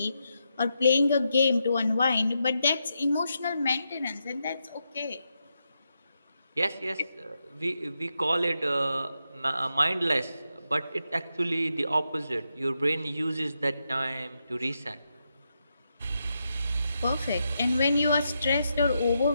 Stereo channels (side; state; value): both; inverted; correlation -0.84